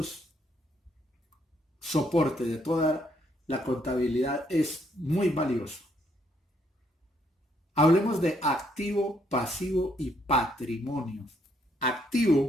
soporte de toda la contabilidad es muy valioso. Hablemos de activo, pasivo y patrimonio.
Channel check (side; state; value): both; normal; correlation 0.71